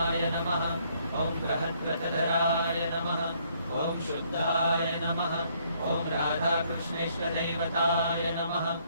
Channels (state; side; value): inverted; both; correlation -0.67